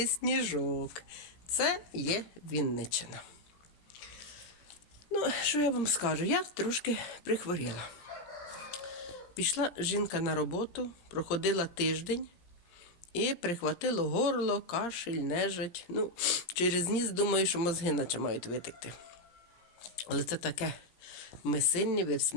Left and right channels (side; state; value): right; late; 17 ms